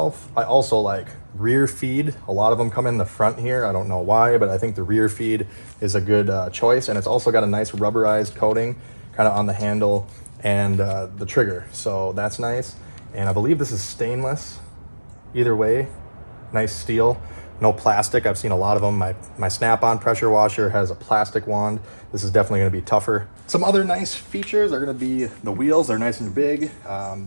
I also like rear feed. A lot of them come in the front here. I don't know why, but I think the rear feed is a good choice. And it's also got a nice rubberized coating kind of on the handle and the trigger. So that's nice. And I believe this is stainless. Either way, nice steel, no plastic. I've seen a lot of them. My Snap-on pressure washer has a plastic wand. This is definitely gonna be tougher. Some other nice features are gonna be the wheels. They're nice and big.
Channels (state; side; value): inverted; both; correlation -1.00